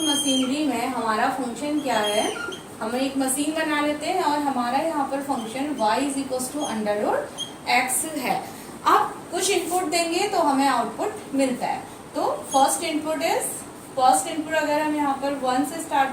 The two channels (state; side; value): identical; both; correlation 1.00